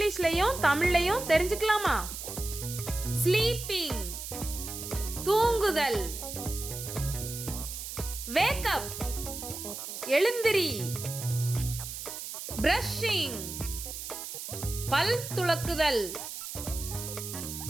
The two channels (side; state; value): right; noise; hiss, 8 dB below the sound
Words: தமிழ்லையும் தெரிஞ்சுக்கலாமா? ஸ்லீப்பிங் தூங்குதல், வேக் அப் எழுந்திரி, பிரஷிங் பல் துலக்குதல்,